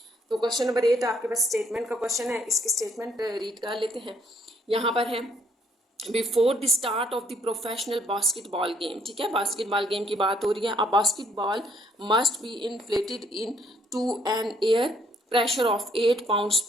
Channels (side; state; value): both; normal; correlation 0.66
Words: तो क्वेश्चन नंबर 8 आपके पास स्टेटमेंट का क्वेश्चन है, इसके स्टेटमेंट रीड कर लेते हैं। यहाँ पर है, before the start of the professional basketball game. ठीक है, बास्केटबॉल गेम की बात हो रही है। A basketball must be inflated into an air pressure of 8 pounds